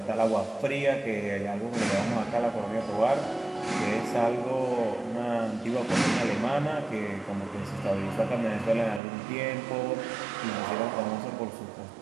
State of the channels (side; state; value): left; drops out; at 9.0 s